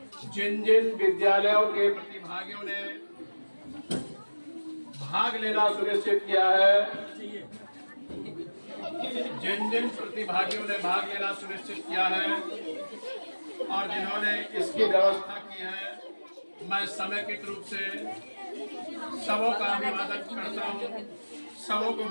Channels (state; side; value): inverted; both; correlation -1.00